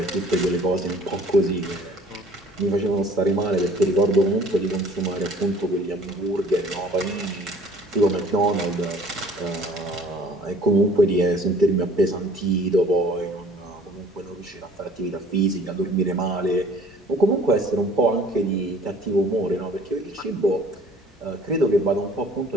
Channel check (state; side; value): normal; both; correlation 0.52